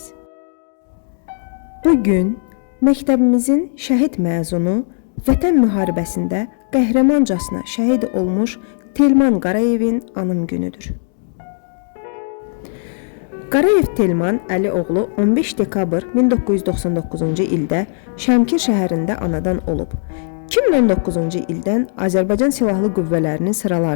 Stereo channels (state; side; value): silent; right; digital silence